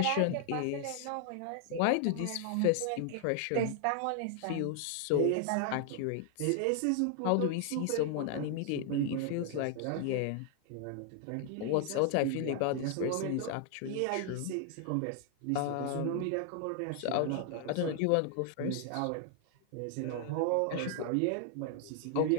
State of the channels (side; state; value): both; different; correlation 0.00